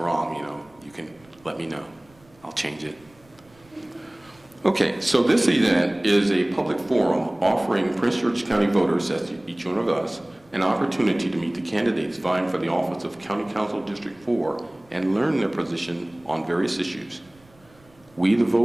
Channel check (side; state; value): right; noise; rumble, 30 dB below the sound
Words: you can let me know. I'll change it. Okay, so this event is a public forum offering Prince George's County voters, that's each one of us, an opportunity to meet the candidates vying for the office of County Council District 4 and learn their position on various issues. We, the